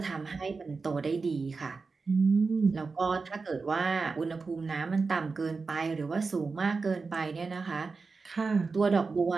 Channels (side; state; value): left; quieter; 4.4 dB